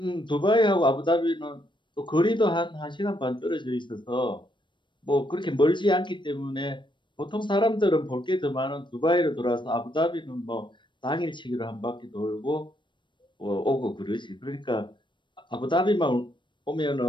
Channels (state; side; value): late; right; 0.23 ms